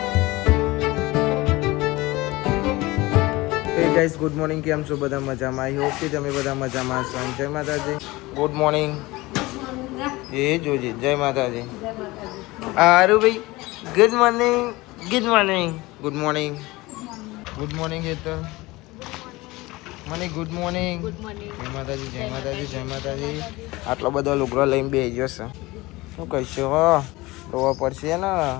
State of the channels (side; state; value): right; quieter; 20.9 dB